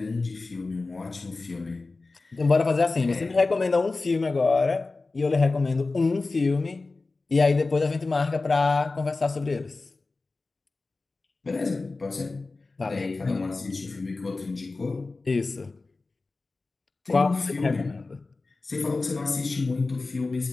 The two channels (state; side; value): quieter; right; 3.6 dB